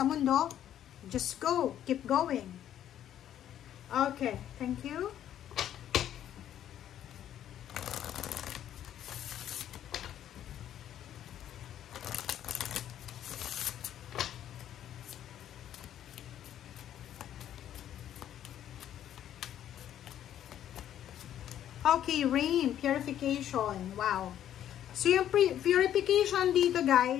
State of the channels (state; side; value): quieter; right; 10.9 dB